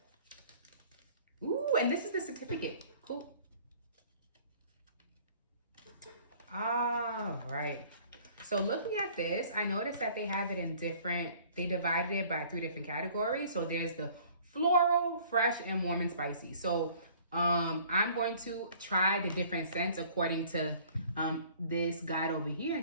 Ooh, and this is the certificate. Cool. All right. So looking at this, I noticed that they have it in different, they divided it by 3 different categories. So there's the floral, fresh, and warm and spicy. So I'm going to try the different scents according to this guide over here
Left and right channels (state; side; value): inverted; both; correlation -0.53